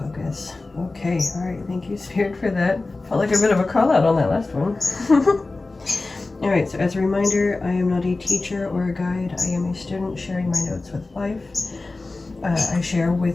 Okay, alright, thank you, Spirit, for that. Felt like a bit of a call out on that last one. Alright, so as a reminder, I am not a teacher or a guide. I am a student sharing my notes with life. I share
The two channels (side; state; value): right; quieter; 3.4 dB